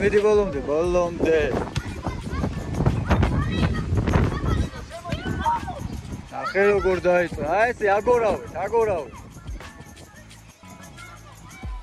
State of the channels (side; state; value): both; identical; correlation 1.00